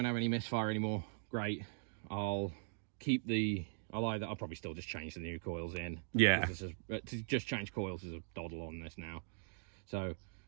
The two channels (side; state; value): left; silent; digital silence